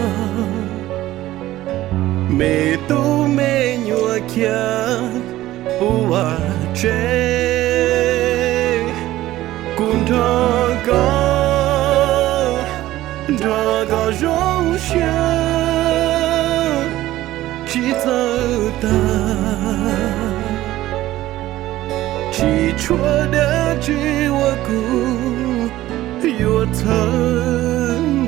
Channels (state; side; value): quieter; left; 15.4 dB